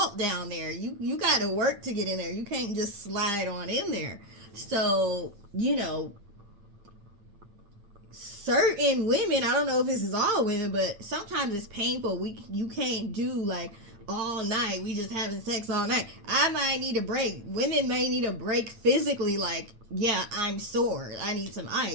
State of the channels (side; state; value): left; late; 8.9 ms